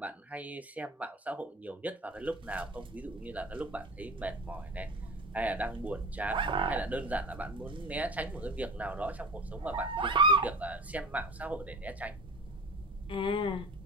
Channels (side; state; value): both; normal; correlation 0.36